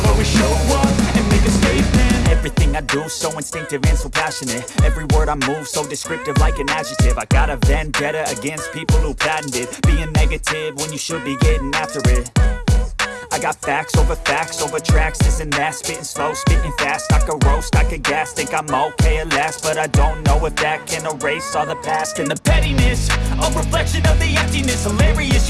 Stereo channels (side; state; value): both; identical; correlation 1.00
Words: always show up and make a statement. Everything I do so instinctive and so passionate. Every word I move so descriptive like an adjective. I got a vendetta against people who patented being negative when you should be getting after it. I got facts over tracks, this and that. Spitting slow, spitting fast, I could roast, I could gas. Think I'm okay at last, but I don't know if that can erase all the past. And the pettiness, a reflection of the emptiness. Hilarious,